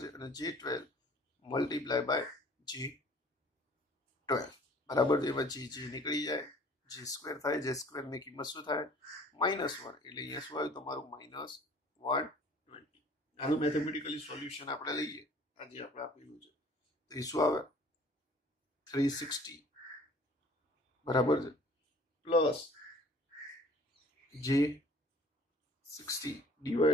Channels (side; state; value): both; normal; correlation 0.52